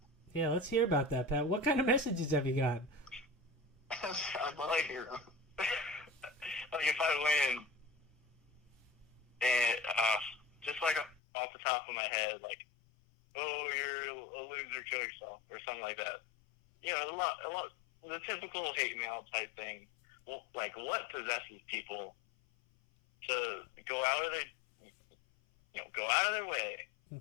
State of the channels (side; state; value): right; drops out; at 11.2 s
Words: Yeah, let's hear about that, Pat. What kind of messages have you gotten? I'd love to hear them. Like if I win, and just like off the top of my head, like, oh, you're a loser, kill yourself, or something like that. You know, a lot, the typical hate mail type thing. Well, like, what possesses people to go out of their way,